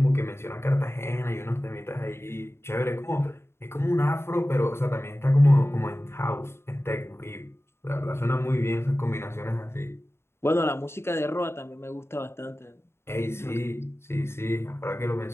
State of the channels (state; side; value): late; right; 0.12 ms